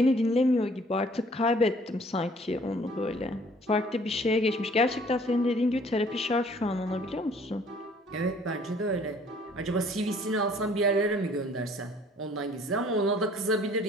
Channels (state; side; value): normal; both; correlation 0.57